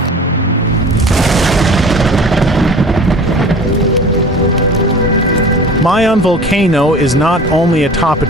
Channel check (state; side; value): normal; both; correlation 0.41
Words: Mayon Volcano is not only a top